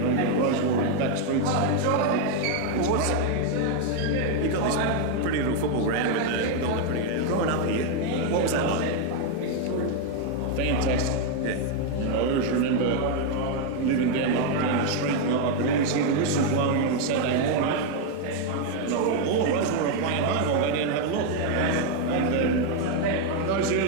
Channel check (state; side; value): different; both; correlation 0.01